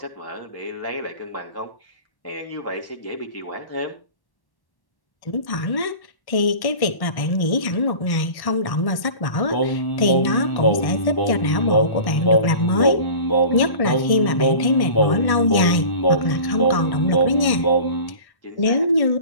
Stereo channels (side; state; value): right; late; 1.1 ms